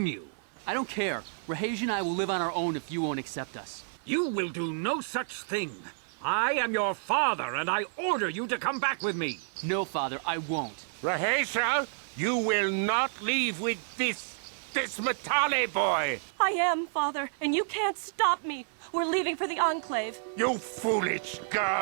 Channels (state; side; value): silent; left; 57 dB below the other